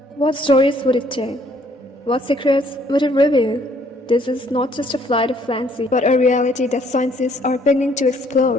What stories would it tell? What secrets would it reveal? This is not just a flight of fancy, but a reality that scientists are beginning to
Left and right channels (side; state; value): both; normal; correlation 0.63